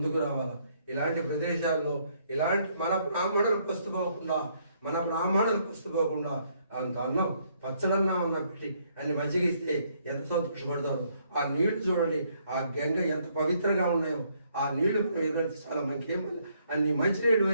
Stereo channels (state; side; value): inverted; both; correlation -0.70